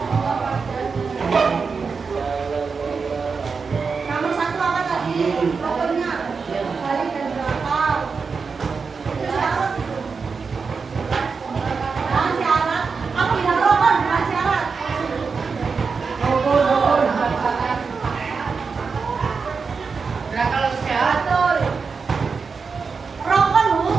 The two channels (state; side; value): quieter; left; 5.1 dB